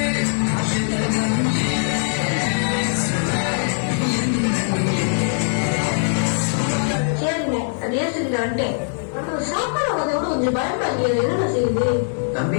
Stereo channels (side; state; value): right; silent; digital silence